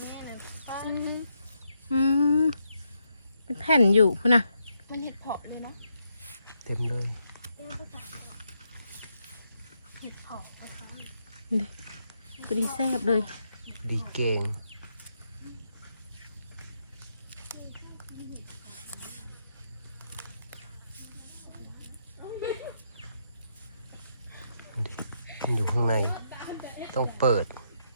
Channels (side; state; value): both; inverted; correlation -0.80